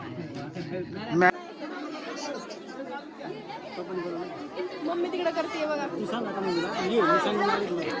मम्मी तिकडे करते बघा. तू सांग आता मम्मीला.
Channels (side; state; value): both; identical; correlation 1.00